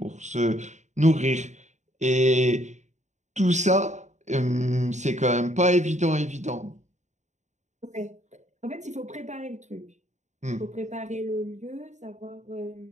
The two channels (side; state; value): left; late; 0.34 ms